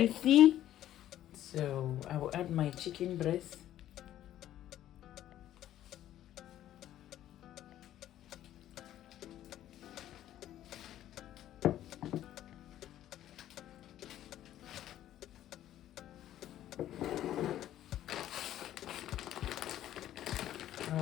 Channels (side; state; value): right; quieter; 12.4 dB